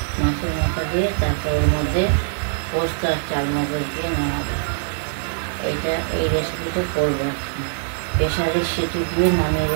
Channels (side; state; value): left; silent; digital silence